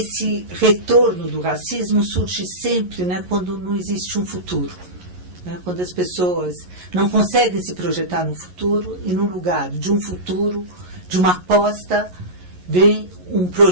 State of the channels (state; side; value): late; left; 11 ms